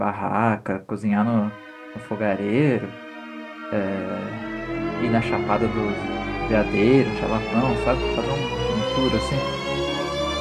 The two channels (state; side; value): identical; both; correlation 1.00